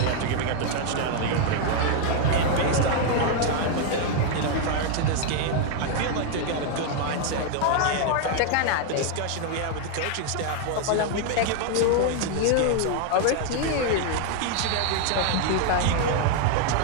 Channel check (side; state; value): both; different; correlation 0.00